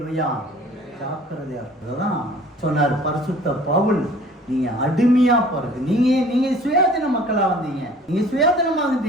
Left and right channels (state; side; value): normal; both; correlation 0.50